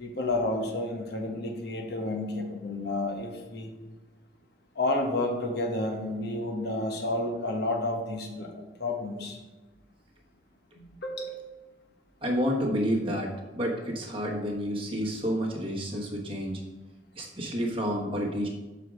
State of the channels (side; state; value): both; normal; correlation 0.36